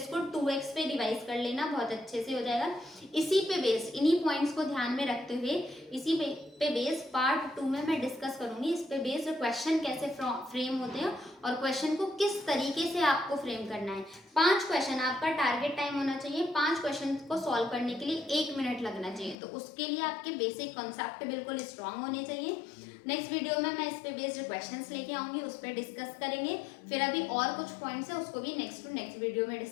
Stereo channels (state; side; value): drops out; right; at 19.4 s